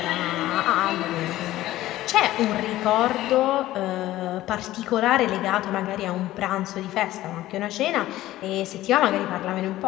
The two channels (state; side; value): quieter; right; 15.4 dB